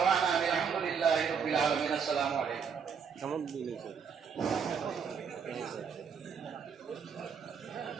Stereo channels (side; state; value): left; quieter; 6.5 dB